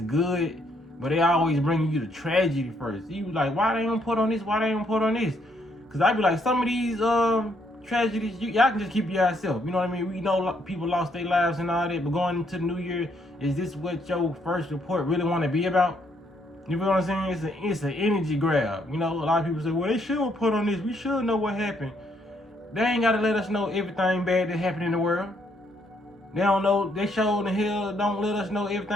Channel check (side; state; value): both; normal; correlation 0.72